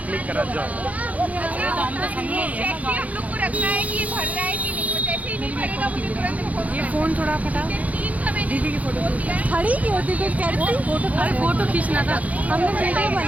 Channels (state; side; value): late; left; 0.071 ms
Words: क्लिक करा जाओ। हम लोग को रखना है कि ये भर रहा है कि नहीं, जैसे ही नहीं भरेगा मुझे तुरंत ये फोन थोड़ा फटा। दीदी की फोटो खड़ी क्यों होती कुछ करती फोटो खींचना था, हमने वीडियो